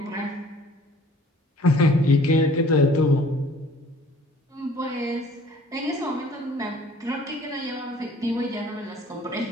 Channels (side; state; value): both; normal; correlation 0.53